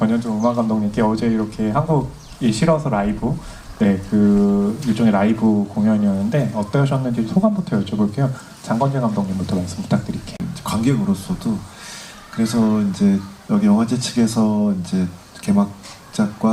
음악 감독님께 어제 이렇게 한국이 싫어서 라이브 네, 그 일종의 라이브 공연이었는데 어떠셨는지 소감부터 여쭤볼게요. 장건재 감독님부터 말씀 부탁드릴게요. 관객으로서도 그래서 이제 여기 영화제 측에서 이제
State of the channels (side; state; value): both; identical; correlation 1.00